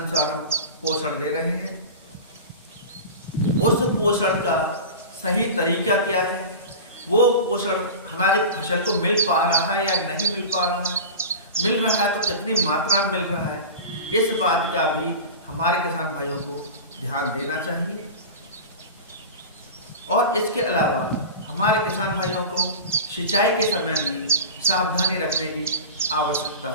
हम पोषण दे रहे हैं, उस पोषण का सही तरीका क्या है, वो पोषण हमारी फसल को मिल पा रहा है या नहीं मिल पा रहा है, मिल रहा है तो कितनी मात्रा में मिल रहा है, इस बात का भी हमारे किसान भाइयों को ध्यान देना चाहिए। और इसके अलावा हमारे किसान भाइयों को सिंचाई के समय भी सावधानी रखने की आवश्यकता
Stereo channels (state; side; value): inverted; both; correlation -0.30